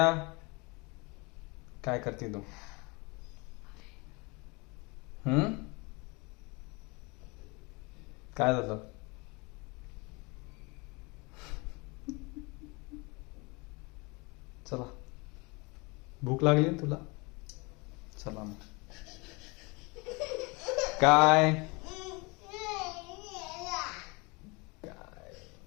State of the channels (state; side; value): quieter; right; 27.8 dB